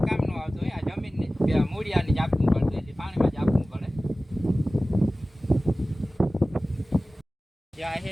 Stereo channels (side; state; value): both; normal; correlation 0.97